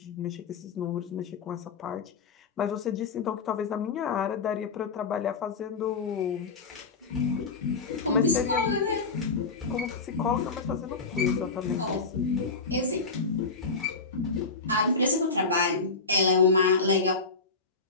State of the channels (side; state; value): right; quieter; 4.3 dB